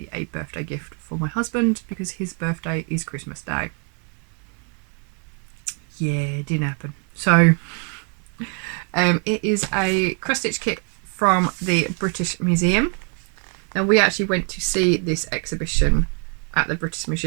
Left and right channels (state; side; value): quieter; left; 39.5 dB